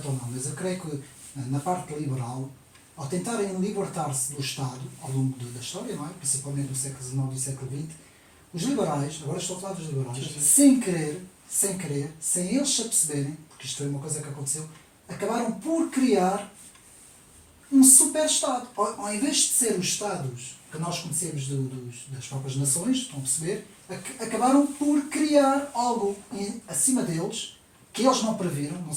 ou não, mas eu creio que na parte liberal, ao tentarem libertar-se do Estado ao longo da história, não é? Principalmente no século XIX e século XX, os liberais, agora estou a falar dos liberais, sem querer, sem eles se aperceberem, porque isto foi uma coisa que aconteceu, acabaram por criar um super-Estado. Ao invés de ser os Estados que nós conhecemos das próprias nações, estão a perceber, acabaram por criar algo acima deles, que eles não previram. Não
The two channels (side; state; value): both; identical; correlation 1.00